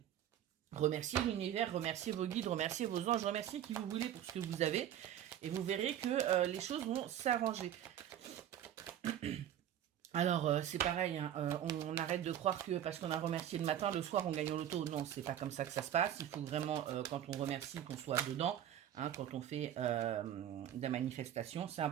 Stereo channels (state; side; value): quieter; left; 10.7 dB